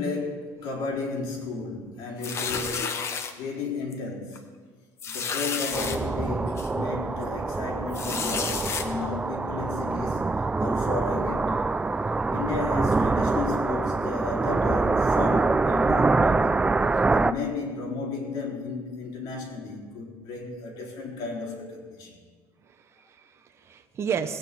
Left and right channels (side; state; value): both; normal; correlation 0.75